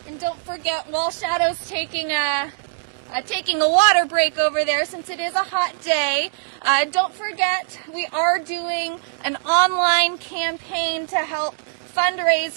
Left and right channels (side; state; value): left; silent; digital silence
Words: And don't forget, while Shadow's taking a water break over there, since it is a hot day, don't forget we are doing an online campaign to help fundraise